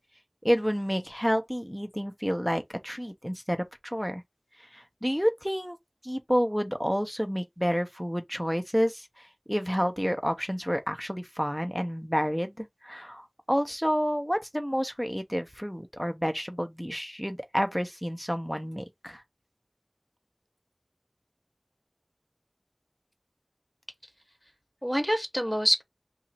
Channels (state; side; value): identical; both; correlation 1.00